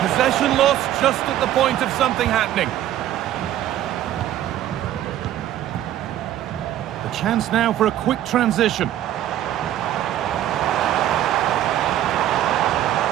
lost just at the point of something happening. The chance now for a quick transition.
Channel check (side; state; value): left; quieter; 12.4 dB